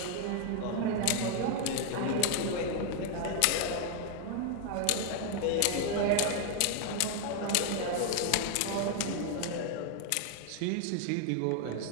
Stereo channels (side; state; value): both; different; correlation 0.00